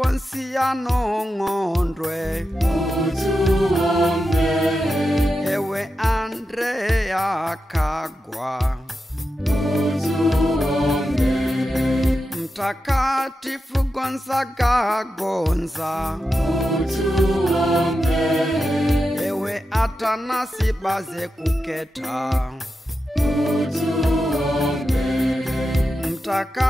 Ng'ondwe, utuombe. Ewe Andrea Kagwa, utuombe. Mtakatifu Gonzaga Gonza, utuombe. Ewe Atanasi Baze Kuketa, utuombe.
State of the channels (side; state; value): both; normal; correlation 0.90